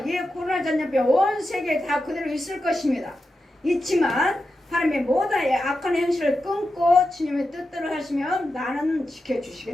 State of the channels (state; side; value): normal; both; correlation 0.89